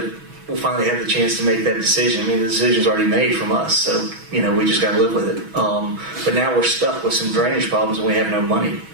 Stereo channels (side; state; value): left; late; 6.1 ms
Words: finally have the chance to make that decision. The decision's already made from us, so we just got to live with it. But now we're stuck with some drainage problems, and we have no money,